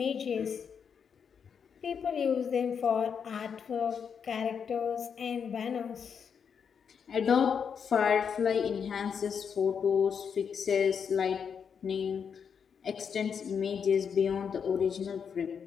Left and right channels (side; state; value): right; quieter; 6.9 dB